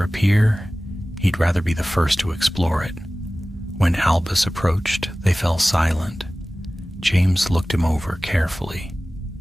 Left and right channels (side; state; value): both; normal; correlation 0.97